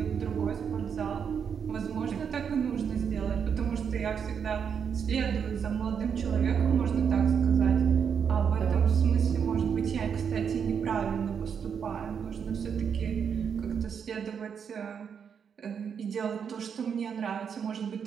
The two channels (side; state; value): left; quieter; 7.2 dB